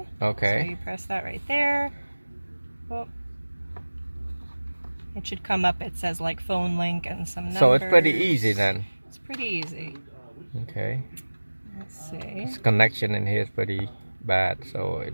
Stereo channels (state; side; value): inverted; both; correlation -1.00